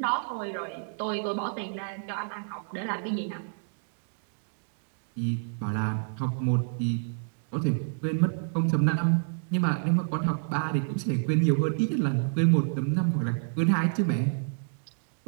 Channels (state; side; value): silent; left; digital silence